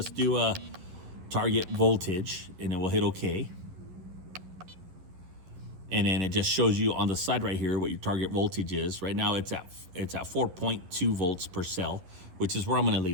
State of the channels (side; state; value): left; late; 11 ms